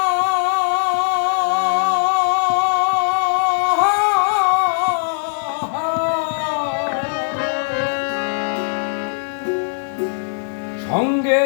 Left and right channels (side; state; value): right; silent; digital silence